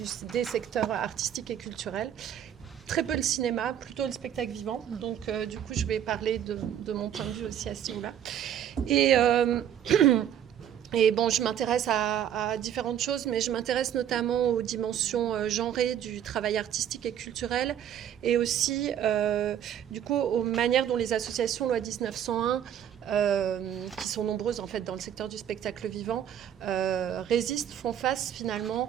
des secteurs artistiques et culturels. Très peu le cinéma, plutôt le spectacle vivant. Donc du coup je vais parler de mon point de vue aussi à ce niveau-là. Et bon, je m'intéresse à différentes choses, mais je m'intéresse notamment aux dimensions genrées du travail artistique et culturel, et aussi, du coup, aux manières dont les associations loi 1901, qui sont nombreuses en fait dans le secteur du spectacle vivant, résistent, font face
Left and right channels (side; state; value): left; quieter; 9.9 dB